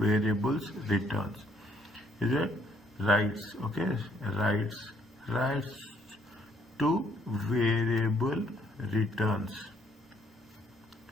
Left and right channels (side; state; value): both; normal; correlation 0.68